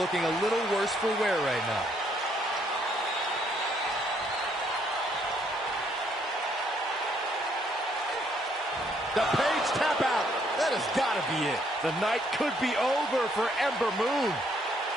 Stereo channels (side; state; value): both; normal; correlation 0.69